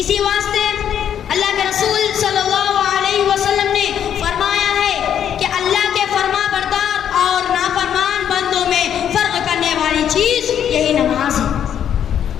واسطے اللہ کے رسول صلی اللہ علیہ وسلم نے فرمایا ہے کہ اللہ کے فرما بردار اور نافرمان بندوں میں فرق کرنے والی چیز یہی نماز ہے.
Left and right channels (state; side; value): quieter; right; 9.3 dB